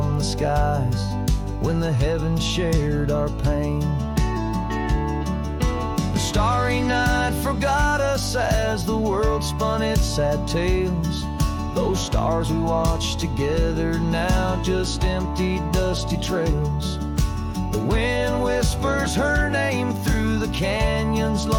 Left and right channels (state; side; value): identical; both; correlation 1.00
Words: the skies when the heavens shared our pain. The starry night forgot us as the world spun its sad tales. Those stars we watched together now just empty, dusty trails. The wind whispers her name through the canyon's